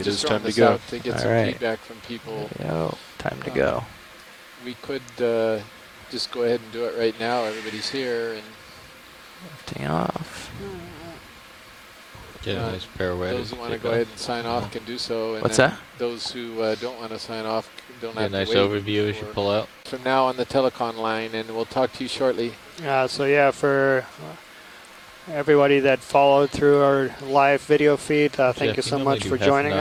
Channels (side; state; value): both; identical; correlation 1.00